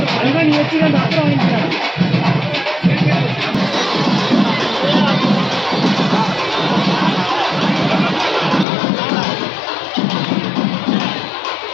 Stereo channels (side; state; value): right; drops out; at 8.7 s